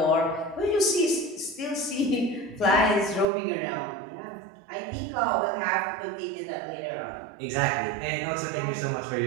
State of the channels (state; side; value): drops out; left; at 3.2 s